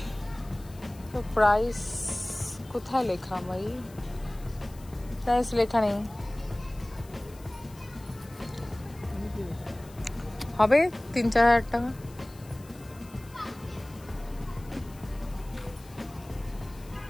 তো প্রাইস কোথায় লেখা ভাই? প্রাইস লেখা নেই। হবে 3-4 হাজার টাকা।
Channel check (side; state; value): left; noise; hiss, 23 dB below the sound